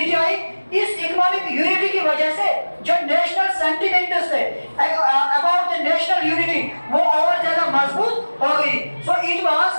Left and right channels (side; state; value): both; inverted; correlation -1.00